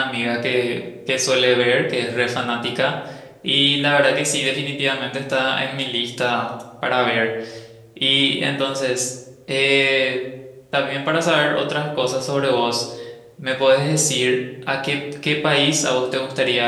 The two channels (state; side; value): identical; both; correlation 1.00